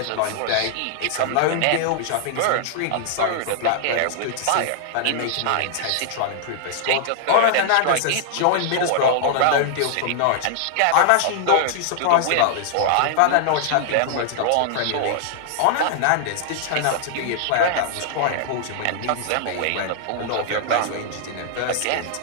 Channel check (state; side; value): different; both; correlation -0.01